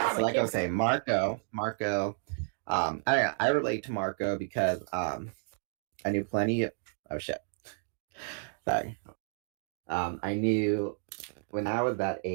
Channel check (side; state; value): left; silent; 57 dB below the other